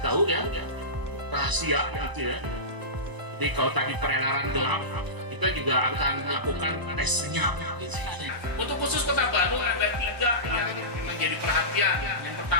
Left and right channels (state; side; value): late; left; 1.0 ms